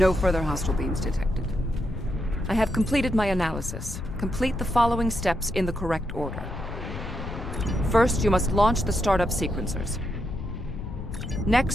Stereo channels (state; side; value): noise; left; rumble, 8 dB below the sound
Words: further hostile beams detected. I have completed my analysis. Complete the following steps in the correct order. First, you must launch the startup sequencers.